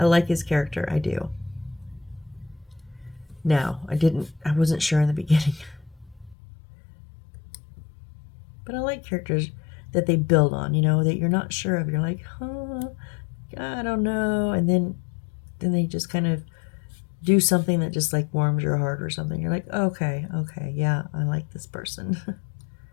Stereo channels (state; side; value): drops out; right; at 6.4 s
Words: like his character. I do. Now, I wasn't sure in the beginning. But I like characters that they build on, that you're not sure of. You're like, huh, I don't know. And then then they just kind of do something that just like warms your heart or something. You're like, okay, yeah, I like this person.